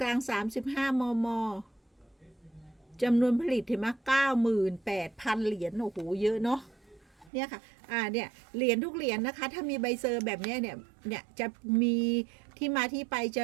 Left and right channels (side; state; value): left; drops out; at 7.3 s